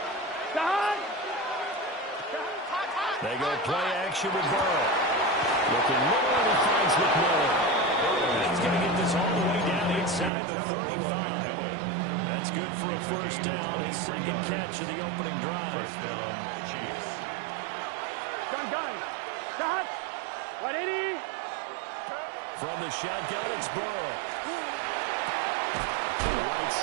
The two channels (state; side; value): drops out; left; at 10.3 s